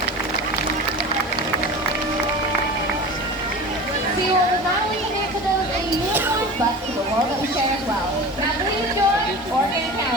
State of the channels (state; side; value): normal; both; correlation 0.34